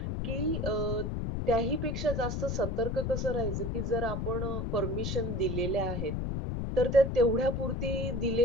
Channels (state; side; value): noise; left; rumble, 1 dB below the sound